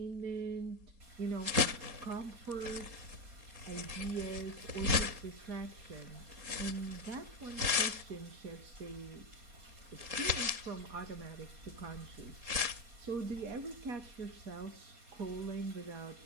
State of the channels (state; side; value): late; left; 4.2 ms